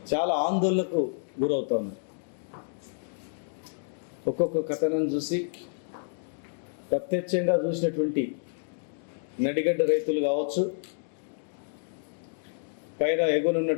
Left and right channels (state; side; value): silent; right; digital silence